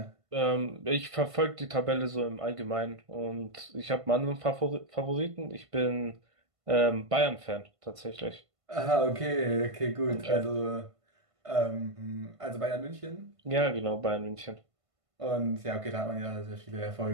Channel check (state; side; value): late; left; 1.5 ms